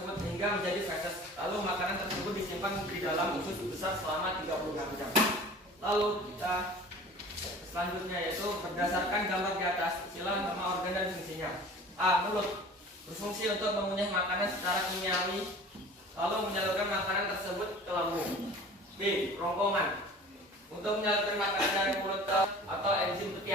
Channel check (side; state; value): both; normal; correlation 0.43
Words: hingga menjadi feses. Lalu makanan tersebut disimpan di dalam usus besar selama 36 jam. Lalu kita selanjutnya yaitu berdasarkan gambar di atas, istilah nama organ dan fungsinya. A. Mulut berfungsi untuk mengunyah makanan secara kimiawi, lalu menyalurkan makanan tersebut ke lambung. B. Kerongkongan untuk menyalurkan makanan dari mulut atau enzim